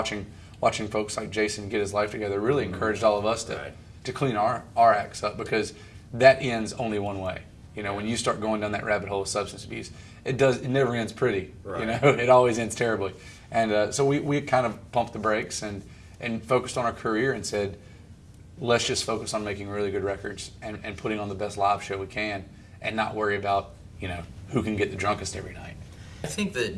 folks like Jason get his life together really encouraged all of us to clean our acts up, because that ends only one way. You know, when you start going down that rabbit hole of substance abuse, it never ends pretty. Right. You know, it always ends terribly. And so we kind of pumped the brakes and focused on our career and said, let's just focus on making really good records and putting on the best live show we can, and not worry about, who can get the drunkest every night. I think that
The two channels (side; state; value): both; identical; correlation 1.00